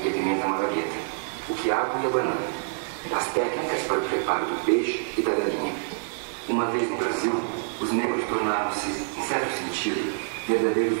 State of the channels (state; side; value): silent; left; 61 dB below the other